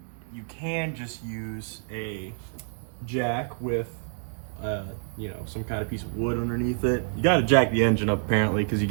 you can just use a jack with, you know, some kind of piece of wood underneath it. You got to jack the engine up apparently, because you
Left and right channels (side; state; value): left; silent; digital silence